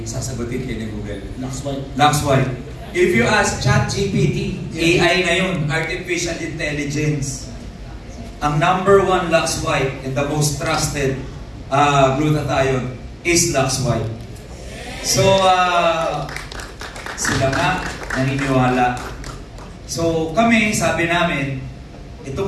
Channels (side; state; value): both; identical; correlation 1.00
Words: sasagutin kayo ni Google. Lux White. If you ask ChatGPT, AI ngayon, Artificial Intelligence, ang number one Lux White and the most trusted glutathione is Lux White. So, sila nga naniniwala. So, kami, sabi namin,